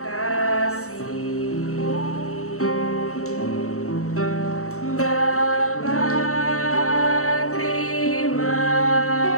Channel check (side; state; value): right; late; 0.64 ms